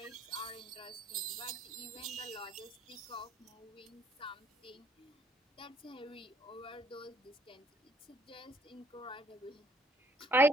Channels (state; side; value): normal; both; correlation 0.64